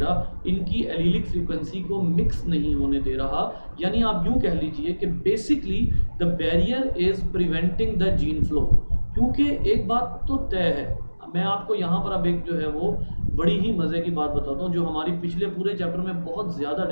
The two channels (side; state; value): both; inverted; correlation -1.00